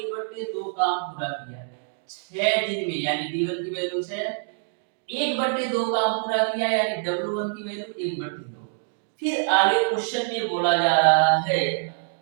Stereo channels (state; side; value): silent; left; 62 dB below the other